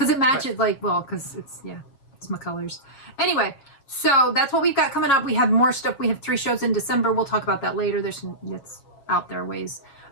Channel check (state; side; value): late; right; 7.2 ms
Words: it matches, because it's my colors. Anyway, so that's what we've got coming up. We have more stuff. We have 3 shows in December. We'll talk about that later. It's out there ways.